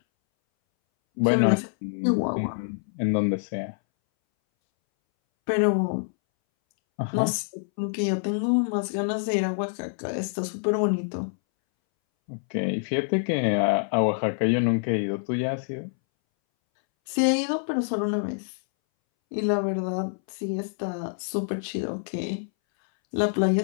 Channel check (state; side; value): silent; right; 61 dB below the other